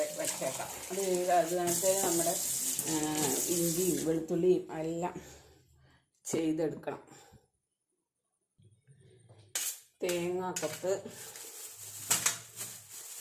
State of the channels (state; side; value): identical; both; correlation 1.00